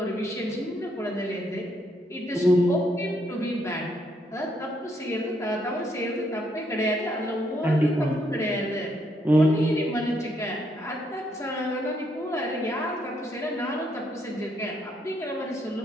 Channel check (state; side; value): normal; both; correlation 0.74